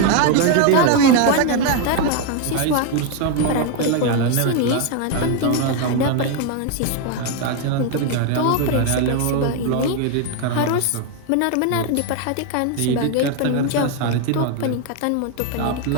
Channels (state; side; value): different; both; correlation 0.01